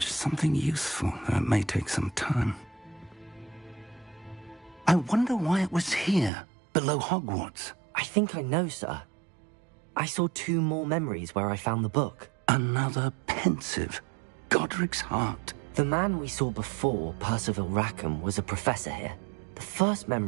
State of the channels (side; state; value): left; drops out; at 6.3 s